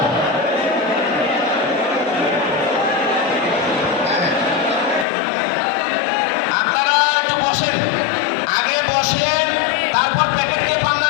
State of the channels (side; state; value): right; drops out; at 5.1 s